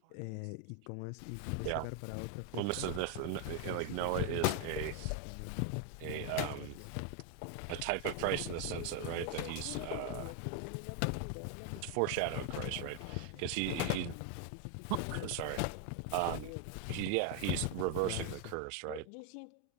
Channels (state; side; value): different; both; correlation 0.01